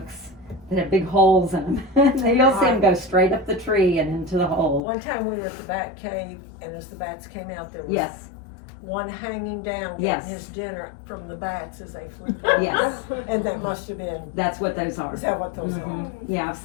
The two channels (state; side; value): drops out; right; at 4.8 s